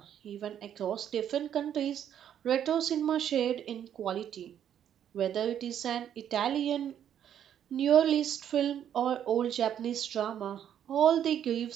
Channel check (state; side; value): quieter; left; 9.8 dB